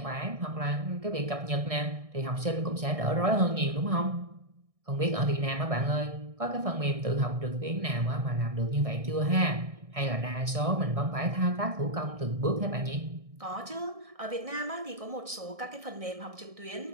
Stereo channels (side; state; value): left; late; 1.6 ms